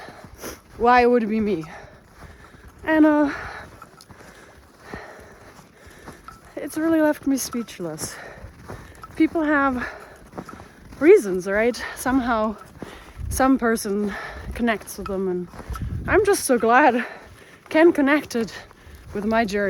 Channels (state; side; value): identical; both; correlation 1.00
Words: it would be me. And it's really left me speechless. People have reasons, right? Somehow some person connects with them, and I'm just so glad Ken connected with my